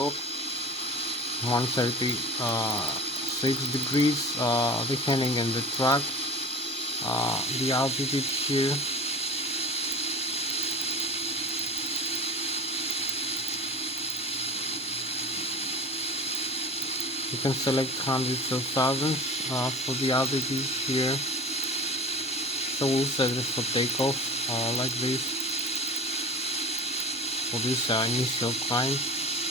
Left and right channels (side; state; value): both; normal; correlation 0.36